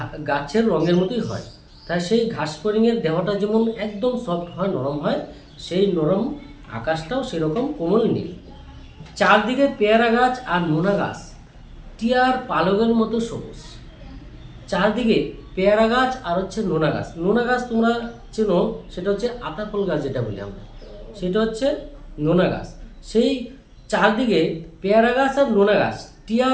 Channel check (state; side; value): identical; both; correlation 1.00